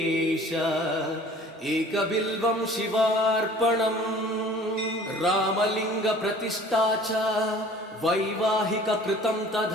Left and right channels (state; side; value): normal; both; correlation 0.49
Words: एकबिल्वं शिवार्पणम् रामलिङ्गप्रतिष्ठा च वैवाहिककृतं